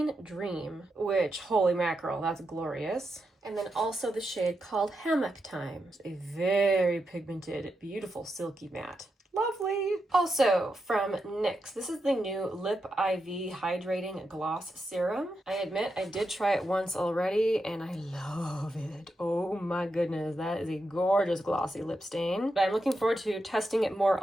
Dream, which, holy mackerel, that's glorious. And then also the shade called Hammock Time. It's a very pigmented, beautiful silky matte. Lovely. Also from NYX, this is the new Lip IV Hydrating Gloss Serum. I admit I did try it once already and I love it. Oh my goodness, that is a gorgeous glossy lip stain. But I'm looking forward to testing it more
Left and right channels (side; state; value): both; normal; correlation 0.86